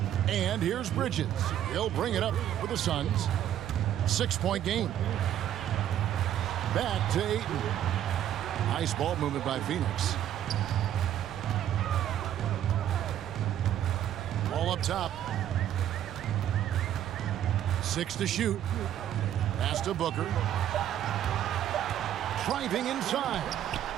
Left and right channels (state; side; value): quieter; left; 11.1 dB